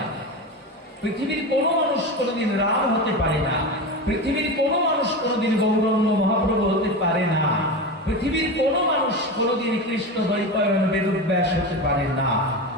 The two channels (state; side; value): normal; both; correlation 0.23